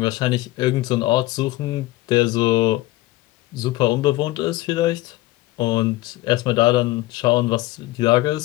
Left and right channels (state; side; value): quieter; right; 18.2 dB